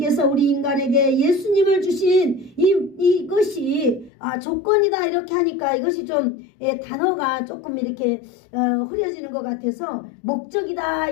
우리 인간에게 예수님을 주신 이것이 조건이다 이렇게 하니까 이것이 좀 단어가 조금 이렇게 흐려지는 것 같아서 목적이다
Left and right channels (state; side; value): drops out; right; at 4.1 s